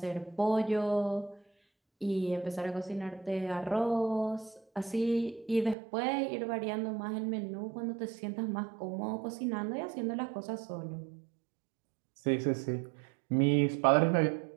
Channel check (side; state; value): left; drops out; at 5.8 s